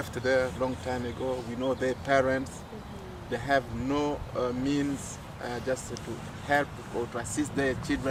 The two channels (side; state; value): both; identical; correlation 1.00